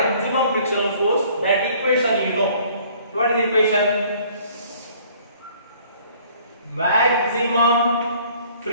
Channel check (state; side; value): inverted; both; correlation -0.57